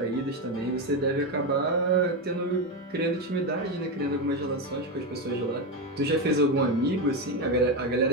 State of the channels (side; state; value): both; normal; correlation 0.12